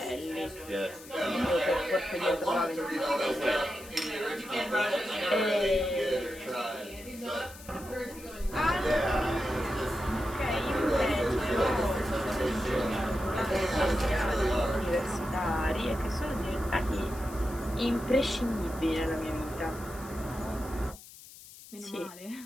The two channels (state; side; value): noise; left; hiss, 18 dB below the sound